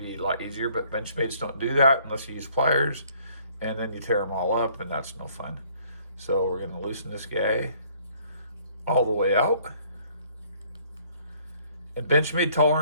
a lot easier, but Benchmades don't do that unless you use pliers, and then you tear them all up, and that's no fun. So we're going to loosen this guy all the way out. And Benchmade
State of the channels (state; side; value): inverted; both; correlation -0.60